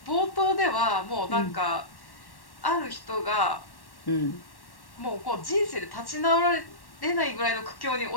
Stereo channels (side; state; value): right; late; 1.1 ms